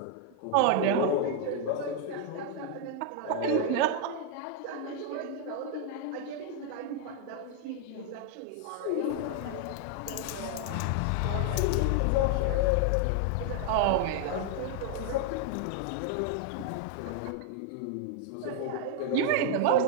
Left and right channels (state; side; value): different; both; correlation 0.00